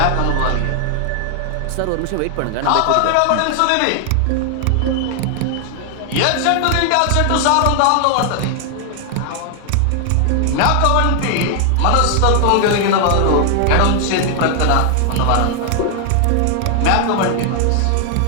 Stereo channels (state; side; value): different; both; correlation 0.00